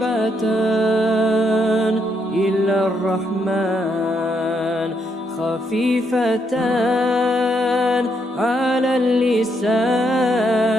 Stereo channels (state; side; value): normal; both; correlation 0.76